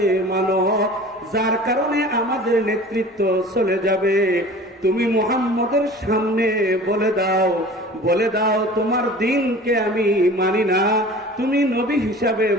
মানো, যার কারণে আমাদের নেতৃত্ব চলে যাবে। তুমি মুহাম্মদের সামনে বলে দাও, বলে দাও তোমার দিনকে আমি মানি না, তুমি নবী হিসাবে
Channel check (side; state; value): both; normal; correlation 0.42